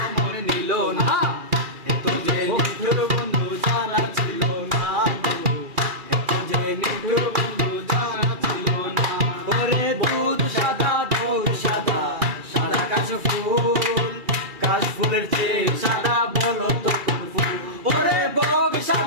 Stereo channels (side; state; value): left; late; 2.4 ms